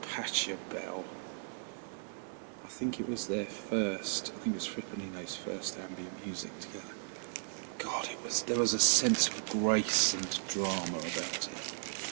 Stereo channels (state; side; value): silent; left; digital silence